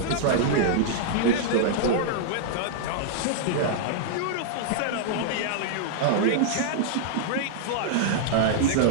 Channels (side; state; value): both; different; correlation -0.01